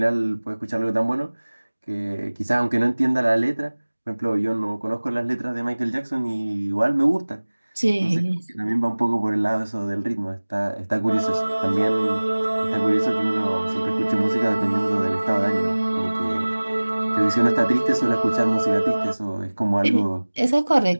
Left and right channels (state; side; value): inverted; both; correlation -1.00